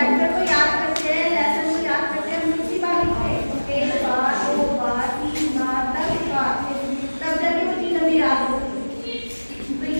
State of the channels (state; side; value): inverted; both; correlation -1.00